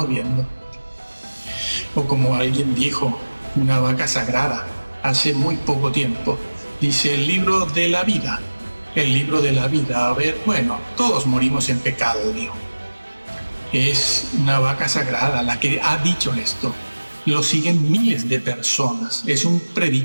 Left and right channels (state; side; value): inverted; both; correlation -1.00